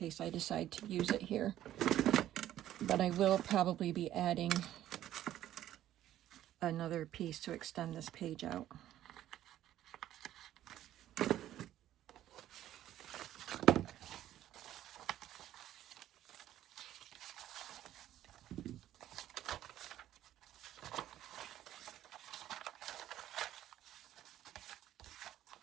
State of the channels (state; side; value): quieter; left; 12.7 dB